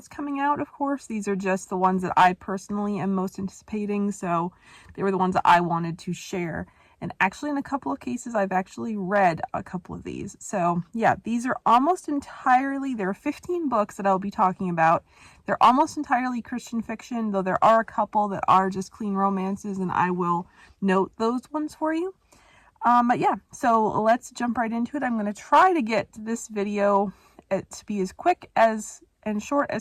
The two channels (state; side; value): identical; both; correlation 1.00